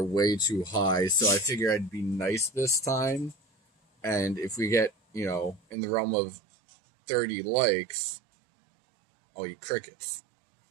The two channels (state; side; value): drops out; left; at 5.8 s